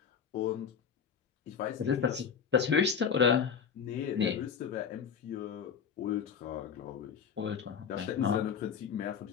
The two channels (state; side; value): quieter; right; 7.0 dB